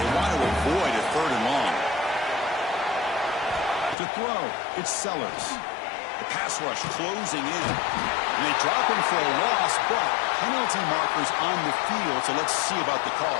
want to avoid a third and long. To throw, it's Sellers. The pass rush closing in. And they drop him for a loss, but penalty markers on the field, so let's see about the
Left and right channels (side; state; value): right; drops out; at 4.0 s